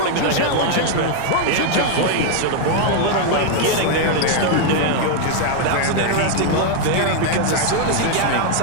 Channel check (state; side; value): different; both; correlation 0.00